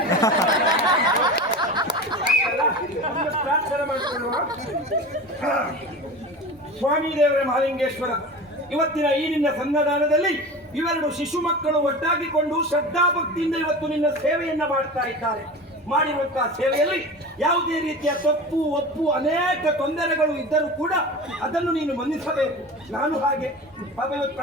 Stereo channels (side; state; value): both; normal; correlation 0.32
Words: ಪ್ರಾರ್ಥನೆ ಮಾಡಿಕೊಳ್ಳುವ. ಸ್ವಾಮಿ ದೇವರ ಮಹಾಲಿಂಗೇಶ್ವರ, ಇವತ್ತಿನ ಈ ನಿನ್ನ ಸನ್ನದಾನದಲ್ಲಿ ಇವೆರಡು ಶಿಶು ಮಕ್ಕಳು ಒಟ್ಟಾಗಿಕೊಂಡು ಶ್ರದ್ಧಾಭಕ್ತಿಯಿಂದ ಇವತ್ತು ನಿನ್ನ ಸೇವೆಯನ್ನ ಮಾಡ್ತಾ ಇದ್ದಾರೆ. ಮಾಡಿರುವಂತಹ ಸೇವೆಯಲ್ಲಿ ಯಾವುದೇ ರೀತಿಯ ತಪ್ಪು ಒಪ್ಪು ಅನೇಕ ತೊಂದರೆಗಳು ಇದ್ದರೂ ಕೂಡ ಅದನ್ನು ನೀನು ಮನ್ನಿಸಬೇಕು. ನಾನು ಹಾಗೆ